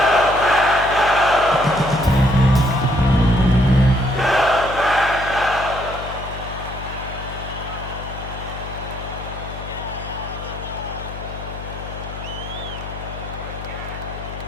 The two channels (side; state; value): left; noise; hum, 10 dB below the sound